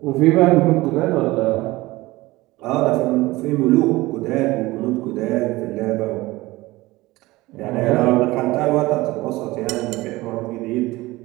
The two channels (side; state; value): left; quieter; 19.7 dB